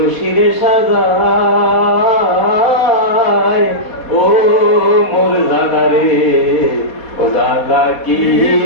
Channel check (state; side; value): late; right; 4.2 ms